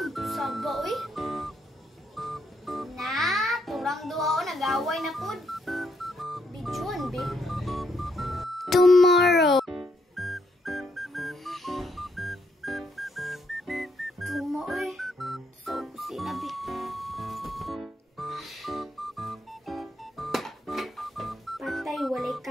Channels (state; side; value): normal; both; correlation 0.75